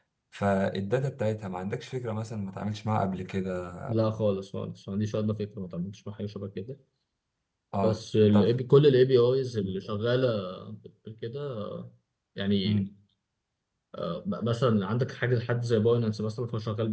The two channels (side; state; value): both; identical; correlation 1.00